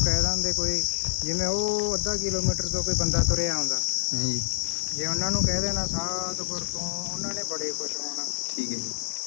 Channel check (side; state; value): right; silent; digital silence